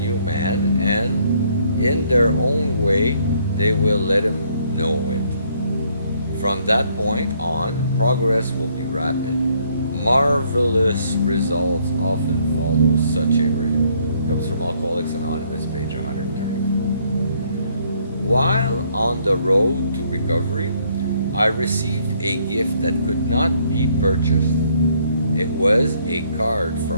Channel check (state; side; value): inverted; both; correlation -0.67